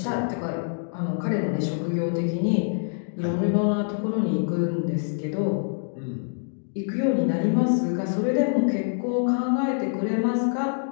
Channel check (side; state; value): right; silent; digital silence